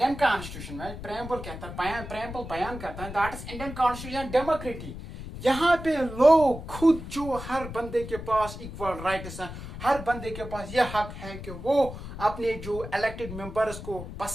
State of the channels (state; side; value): noise; left; rumble, 10 dB below the sound